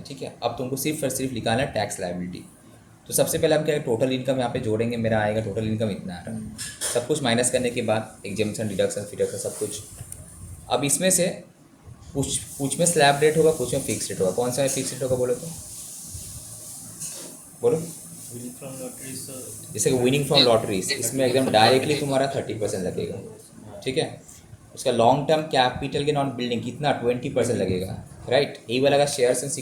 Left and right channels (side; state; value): both; identical; correlation 1.00